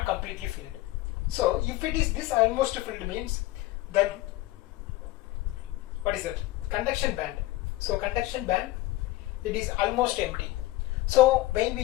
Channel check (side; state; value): right; quieter; 17.6 dB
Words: completely filled. So if it is this almost filled means, then what is it? Conduction band. So conduction band, it is almost empty. So when